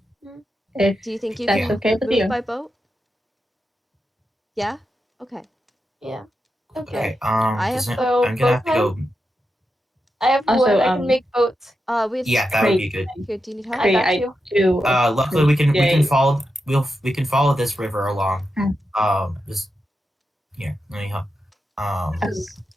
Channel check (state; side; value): normal; both; correlation 0.88